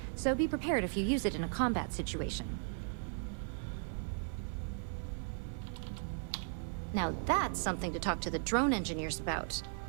so be prepared if you use it in a combat situation. Now that's something to talk to the drone engineers about.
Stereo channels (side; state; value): left; silent; 53 dB below the other